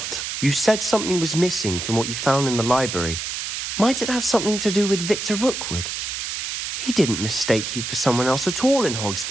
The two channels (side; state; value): right; noise; hiss, 4 dB below the sound